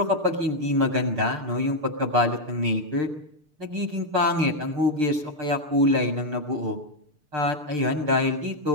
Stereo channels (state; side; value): late; left; 6.7 ms